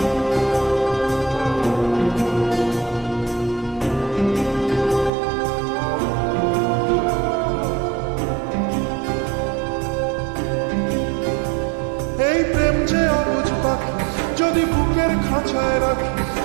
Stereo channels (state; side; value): drops out; left; at 5.1 s